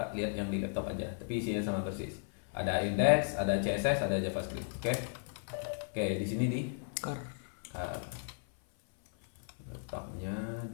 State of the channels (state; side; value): silent; right; 54 dB below the other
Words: lihat yang di laptop aja. Tapi isinya sama persis. Ada index, ada CSS, ada JavaScript. Oke? Oke, di sini di Car. letaknya